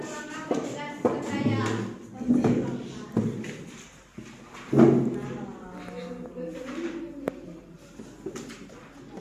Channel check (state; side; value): identical; both; correlation 1.00